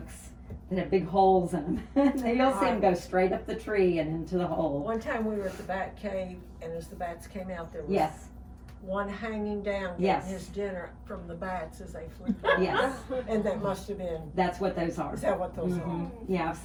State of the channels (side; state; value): both; identical; correlation 1.00